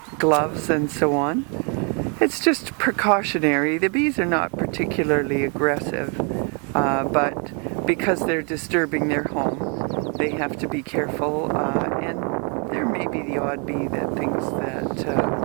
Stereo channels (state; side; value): quieter; left; 37.4 dB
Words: gloves and so on. It's just precautionary. The bees are not particularly aggressive, but because they're disturbing their home, they have to be careful, and there may be the odd bee that thinks